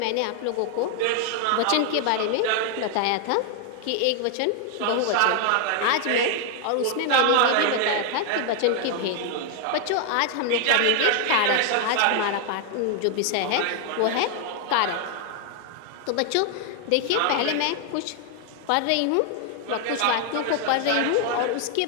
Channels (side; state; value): both; different; correlation 0.00